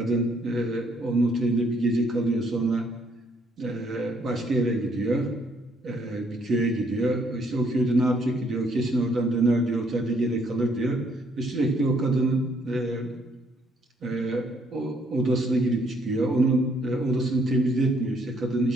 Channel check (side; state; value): both; normal; correlation 0.68